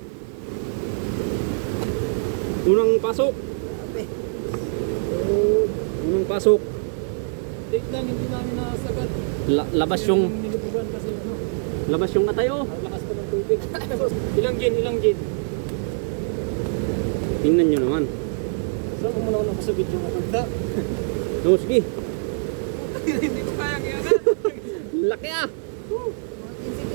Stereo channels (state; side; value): silent; left; digital silence